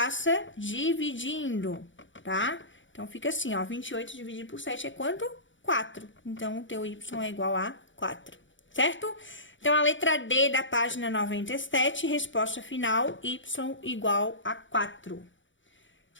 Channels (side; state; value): right; late; 0.55 ms